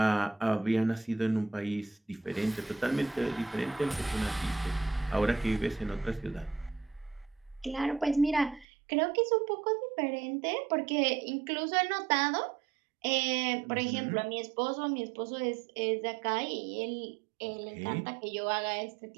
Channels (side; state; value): left; drops out; at 8.7 s